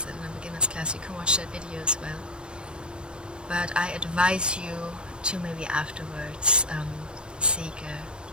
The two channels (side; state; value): left; late; 0.051 ms